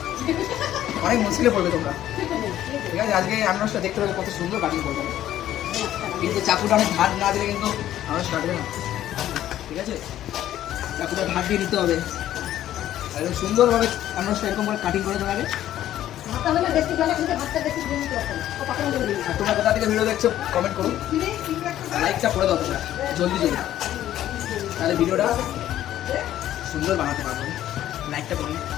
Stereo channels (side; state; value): right; quieter; 12.5 dB